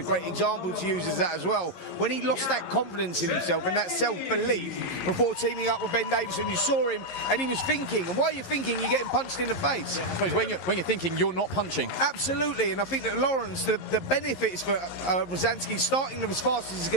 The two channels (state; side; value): late; right; 11 ms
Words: great example to use as that as well. When he lost that confidence in himself and that self-belief before teaming up with Ben Davison, you saw him and he was thinking, and while you're thinking, you're getting punched in the face. Yeah, I suppose when you're thinking, you're not punching. Absolutely, and I think that Lawrence, the benefits for Rozanski starting them as fast as he's